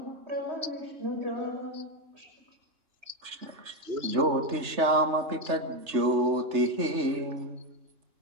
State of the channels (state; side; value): late; left; 3.3 ms